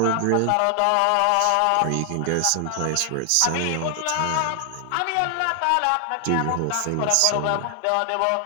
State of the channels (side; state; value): both; different; correlation 0.00